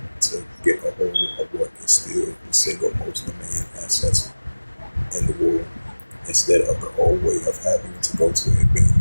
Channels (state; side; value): inverted; both; correlation -1.00